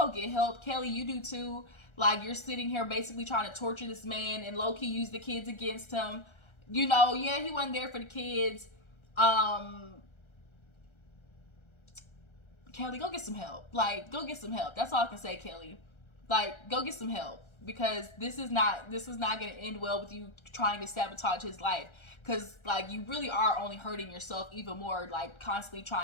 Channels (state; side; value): late; right; 1.3 ms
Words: get help. Kelly, you do too. Like, you're sitting here basically trying to torture this man and low-key use the kids against him. You know, yeah, he wasn't there for the kids. Kelly, go get some help. Like, go get some help. That's all I can say, Kelly. Like, go get some help. Because this is not going to end well with you trying to sabotage his life. Because, like, you really are only hurting yourself even more, like, constantly